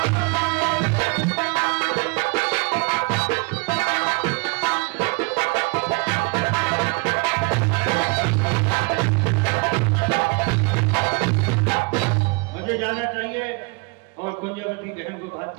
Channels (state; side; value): quieter; left; 29.5 dB